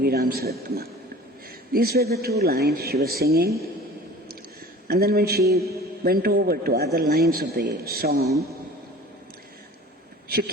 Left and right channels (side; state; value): both; normal; correlation 0.43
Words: Ramsuratkumar. These were the two lines she was singing. And then when she went over to other lines of the song, she